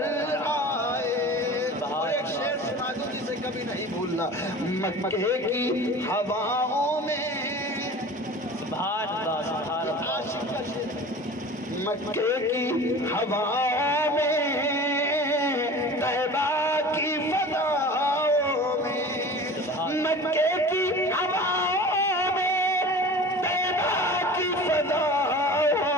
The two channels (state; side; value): normal; both; correlation 0.39